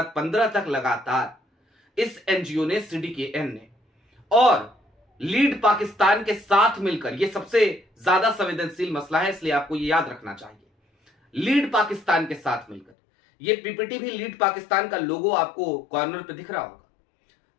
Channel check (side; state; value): right; drops out; at 12.9 s